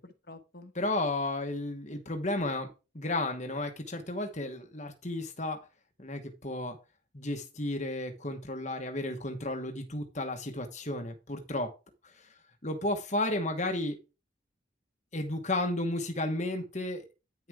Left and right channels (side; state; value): both; normal; correlation 0.21